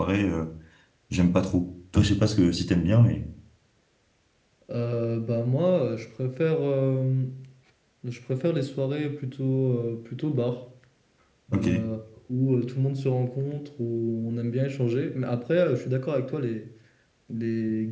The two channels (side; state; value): both; identical; correlation 1.00